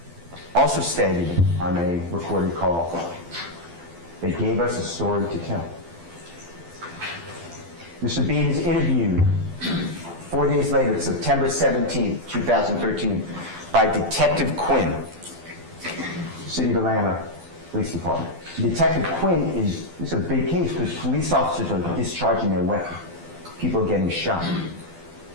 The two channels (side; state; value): left; late; 12 ms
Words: also stated on a recorded call, they gave us a story to tell. Mr. Bean is interviewed 4 days later, September 17, 2013, by Detective Quinn, City of Atlanta Police Department. Detective Quinn it's a big case because police officers are discharging their weapon. People are getting shot.